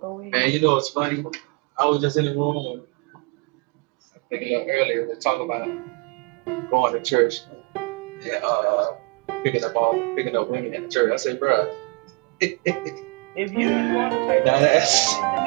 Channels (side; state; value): left; quieter; 29.4 dB